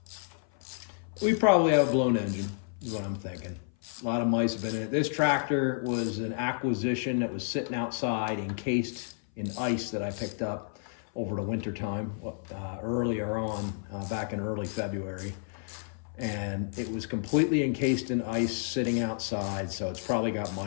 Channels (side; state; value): right; silent; 56 dB below the other